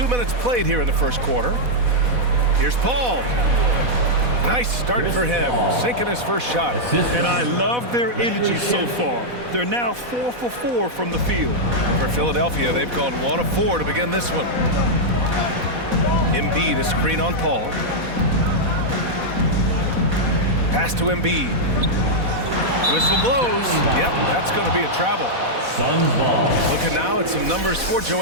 minutes played here in the first quarter. Here's Paul. Nice start for him, sinking his first shot. And I love their energy so far. They're now 4 for 4 from the field. For Philadelphia, they've gone 1 of 4 to begin this one. Embiid, a screen on Paul. Pass to Embiid. Whistle blows. Yep, that's going to be a travel. Suns ball. Looking now at some numbers for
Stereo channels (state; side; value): late; left; 4.1 ms